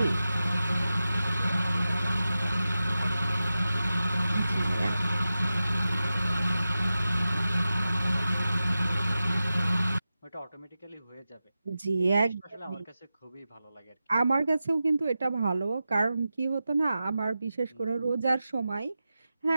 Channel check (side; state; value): both; inverted; correlation -0.93